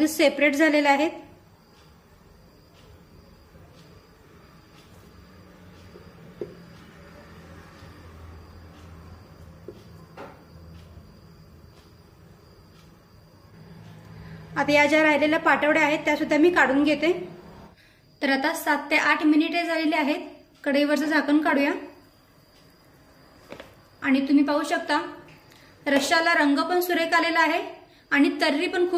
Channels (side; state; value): both; identical; correlation 1.00